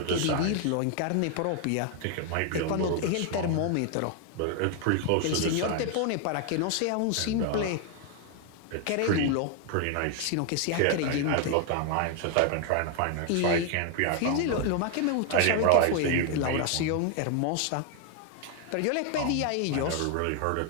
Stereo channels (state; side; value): different; both; correlation 0.01